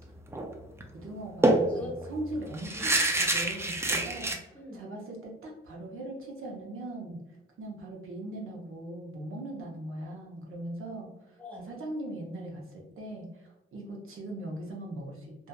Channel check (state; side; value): normal; both; correlation 0.38